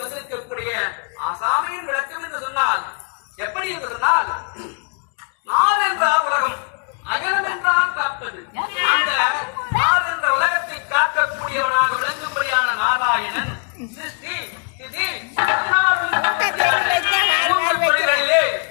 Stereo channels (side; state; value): right; quieter; 39.5 dB